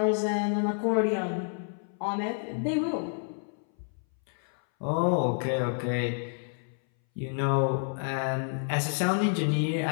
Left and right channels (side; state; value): right; silent; 58 dB below the other